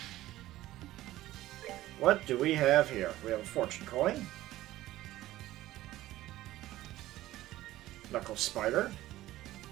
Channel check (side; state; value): left; quieter; 15.5 dB